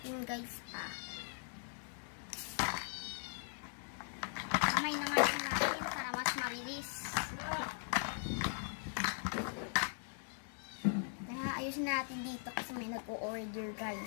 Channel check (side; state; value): right; silent; digital silence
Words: guys pa. Kamay na nga natin para mas mabilis. Kaya ayusin natin dito kasi may nag-o-order